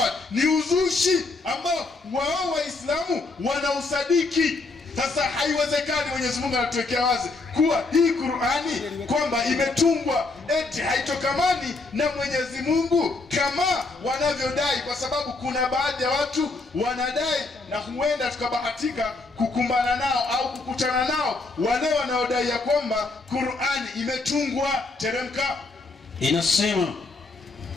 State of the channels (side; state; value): right; quieter; 3.5 dB